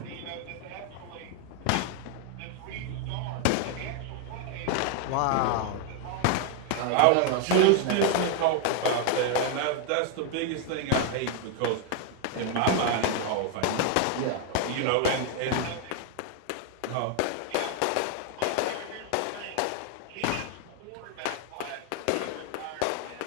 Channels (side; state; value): both; different; correlation 0.01